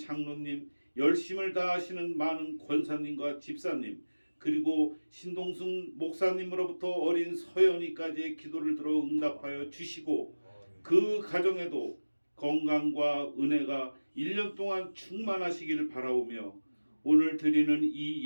열심을 다하시는 많은 권사님과 집사님, 그리고 신동순 목사님으로부터 어린 서연이까지의 기도를 들어 응답하여 주시고 그 가정에도 건강과 은혜가 1년 동안 충만하시기를 바라오며 오늘 드리는 이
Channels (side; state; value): both; inverted; correlation -1.00